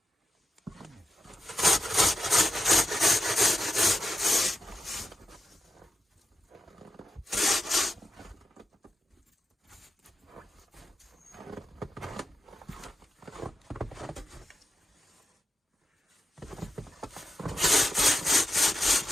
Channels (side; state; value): both; normal; correlation 0.90